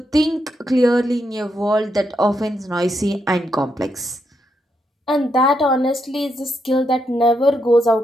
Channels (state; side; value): normal; both; correlation 0.80